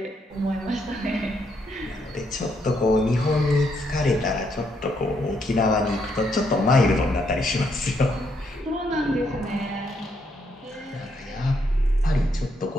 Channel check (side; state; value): both; normal; correlation 0.75